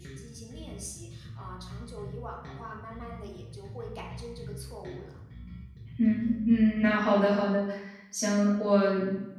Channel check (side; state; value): both; identical; correlation 1.00